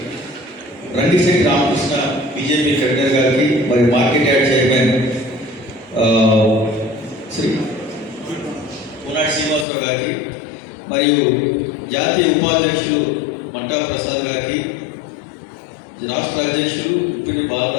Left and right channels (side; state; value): right; drops out; at 9.7 s